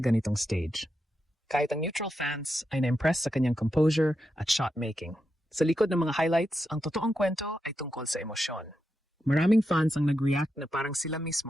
ganitong stage. Kahit ang neutral fans ay na-impress sa kanyang composure at shot-making. Sa likod ng mga highlights, ang totoong kwento ay tungkol sa emosyon. Maraming fans ang nag-react na parang sila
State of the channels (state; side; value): normal; both; correlation 0.86